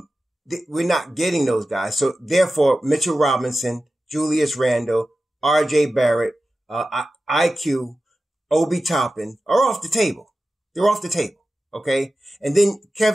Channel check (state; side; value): normal; both; correlation 0.94